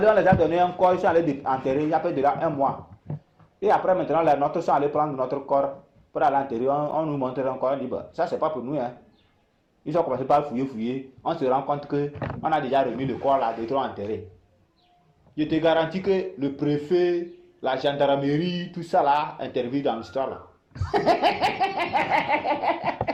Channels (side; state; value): both; identical; correlation 1.00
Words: on les a donné un corps, ils sont allés enterrer, il y a peut-être déjà 1 mois. Et après, maintenant, les nôtres sont allés prendre notre corps pour aller enterrer, on nous montre encore, on dit, bah, ça c'est pas pour nous. Hein. Ils ont commencé par fouiller. On se rend compte qu'on a déjà remis le corps là, de trop enterré. Je te garantis que le préfet, la gendarmerie, tout ça là, intervient dans l'histoire là.